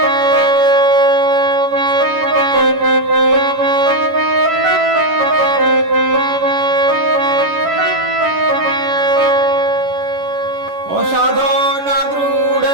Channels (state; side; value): late; left; 11 ms